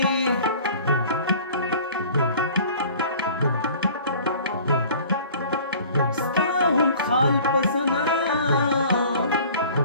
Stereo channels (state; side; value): inverted; both; correlation -0.47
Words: ستا هم خال پسنا